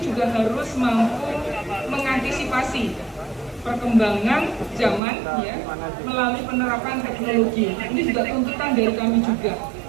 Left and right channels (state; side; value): drops out; left; at 5.0 s